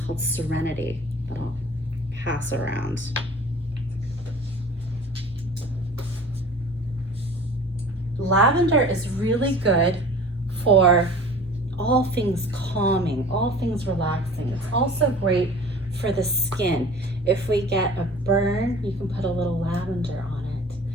called Serenity that I'll pass around. Lavender is really good for all things calming, all things relaxing. It's also great for the skin. If we get a burn, you can put a little lavender on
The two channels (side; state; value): both; normal; correlation 0.43